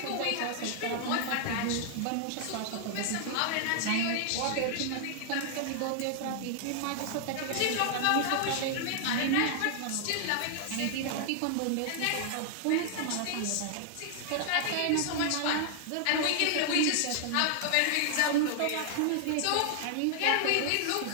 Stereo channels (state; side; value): different; both; correlation 0.00